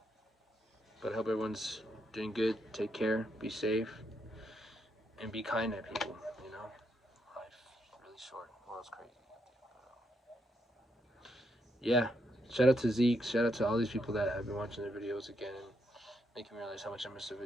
But I hope everyone's doing good. Take care. Be safe. And be kind to people, you know. Life's really short. The world's crazy. Yeah. Shout out to Zeke. Shout out to all these people that have been watching the videos again and making me realize how much I miss the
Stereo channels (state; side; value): normal; both; correlation 0.79